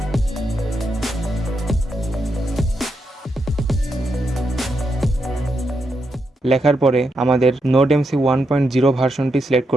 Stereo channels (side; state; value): both; normal; correlation 0.83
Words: লেখার পরে আমাদের নোডএমসি 1.0 ভার্সনটি সিলেক্ট